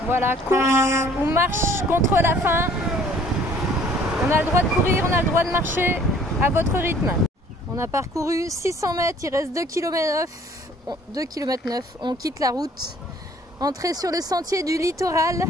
Voilà, course ou marche contre la faim. On a le droit de courir, on a le droit de marcher à votre rythme. On a parcouru 600 mètres, il reste 2,9 km. On quitte la route. Entrée sur le sentier du littoral,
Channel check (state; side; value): normal; both; correlation 0.56